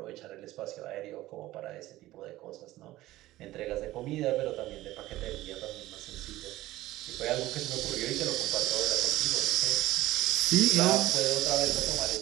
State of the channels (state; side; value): quieter; left; 16.5 dB